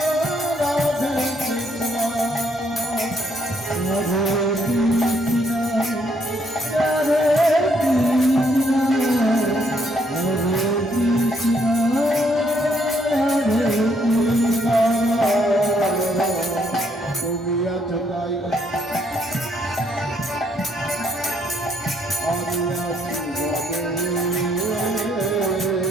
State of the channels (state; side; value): normal; both; correlation 0.71